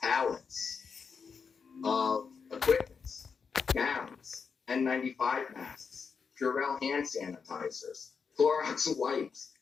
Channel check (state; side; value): quieter; right; 5.8 dB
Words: pallets of equipment, gowns, N95 masks, Purell hand sanitizers, Clorox wipes.